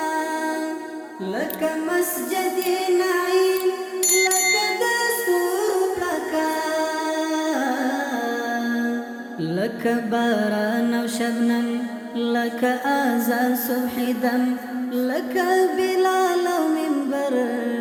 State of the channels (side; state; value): both; identical; correlation 1.00